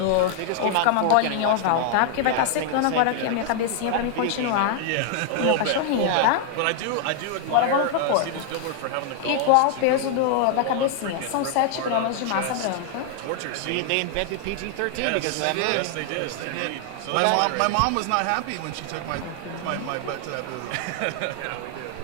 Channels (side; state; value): both; different; correlation 0.00